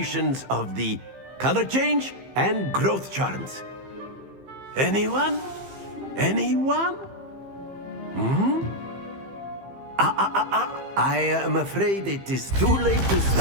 of the color change and growth charms? Anyone? Anyone? I am afraid it is too late to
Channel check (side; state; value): left; late; 15 ms